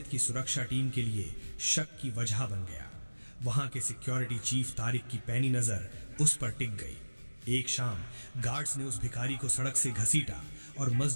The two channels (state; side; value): inverted; both; correlation -1.00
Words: की सुरक्षा टीम के लिए शक की वजह बन गया। वहां के सिक्योरिटी चीफ तारिक की पैनी नजर उस पर टिक गई। एक शाम गार्ड्स ने उस भिखारी को सड़क से घसीटा और